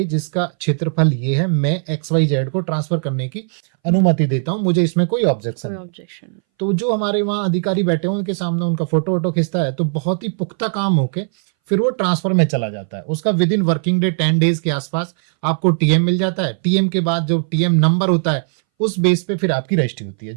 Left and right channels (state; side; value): silent; left; 63 dB below the other